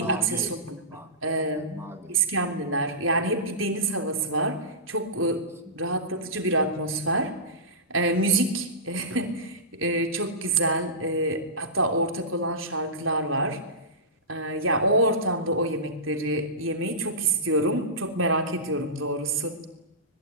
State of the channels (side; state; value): both; normal; correlation -0.20